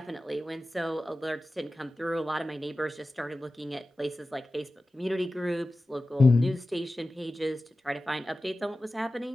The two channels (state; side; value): normal; both; correlation 0.95